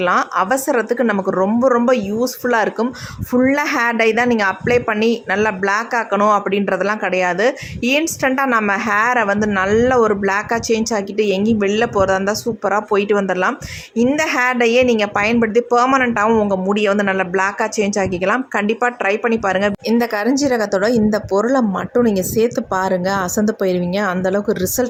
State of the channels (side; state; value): both; identical; correlation 1.00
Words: அவசரத்துக்கு நமக்கு ரொம்ப ரொம்ப யூஸ்ஃபுல்லாக இருக்கும். ஃபுல்லாக ஹேர் டை தான் நீங்கள் அப்ளை பண்ணி நல்லா பிளாக் ஆக்கணும் அப்படின்றதெல்லாம் கிடையாது. இன்ஸ்டண்ட்டாக நம்ம ஹேரை நல்ல ஒரு பிளாக்காக சேஞ்ச் ஆக்கிட்டு எங்கேயும் வெளில போகிறதா இருந்தால் சூப்பராக போயிட்டு வந்துடலாம். இந்த ஹேர் டையை நீங்கள் பயன்படுத்தி பெர்மனண்ட்டாகவும் உங்கள் முடியை நல்ல பிளாக்காக சேஞ்ச் ஆக்கிக்கலாம். கண்டிப்பாக ட்ரை பண்ணி பாருங்கள். இந்த கரிஞ்சீரகத்தோட இந்த பொருளை மட்டும் நீங்கள் சேர்த்து பாருங்கள், அசந்து போயிடுவீங்க. அந்தளவுக்கு